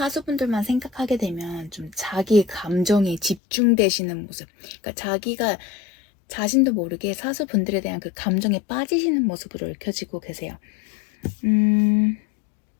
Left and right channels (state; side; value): drops out; right; at 3.4 s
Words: 생각하게 되면 좀 자기 감정에 집중되시는 모습, 그러니까 자기가 자신도 모르게 사수분들에 대한 그 감정에 빠지시는 모습으로 읽혀지고 계세요.